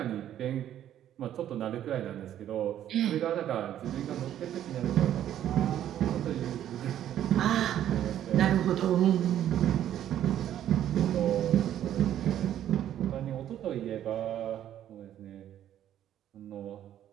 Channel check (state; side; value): quieter; left; 11.2 dB